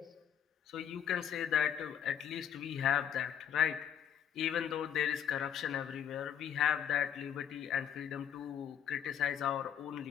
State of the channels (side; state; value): right; quieter; 9.1 dB